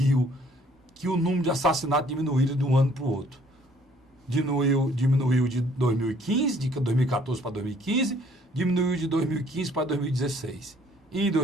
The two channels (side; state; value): both; normal; correlation 0.60